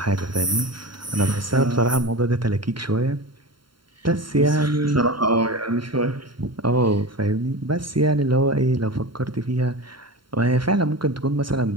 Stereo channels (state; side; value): late; left; 0.72 ms